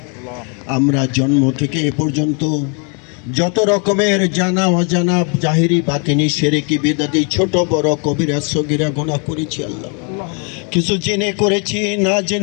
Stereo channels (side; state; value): right; quieter; 37.9 dB